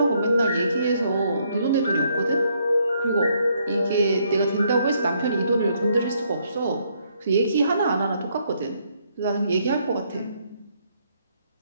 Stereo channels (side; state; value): both; inverted; correlation -0.72